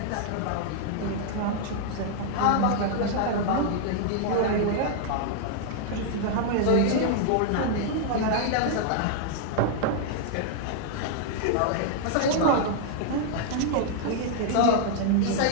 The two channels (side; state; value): both; different; correlation -0.01